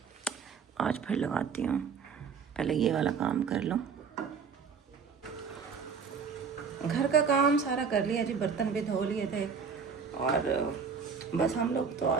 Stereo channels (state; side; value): quieter; left; 6.0 dB